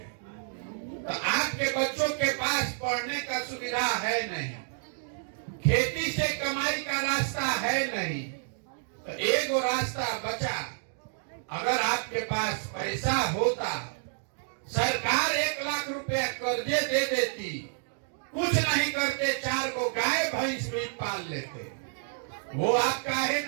तो आपके बच्चों के पास पढ़ने का सुविधा है नहीं, खेती से कमाई का रास्ता है नहीं। तो एक रास्ता बचा। अगर आपके पास पैसा होता, सरकार 1 लाख रुपया कर्जे दे देती, कुछ नहीं करते, 4 को गाय भैंस भी पाल लेते। वो आप काहे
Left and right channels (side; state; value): left; silent; digital silence